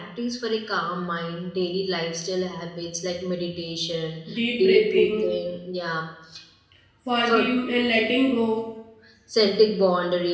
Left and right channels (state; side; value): identical; both; correlation 1.00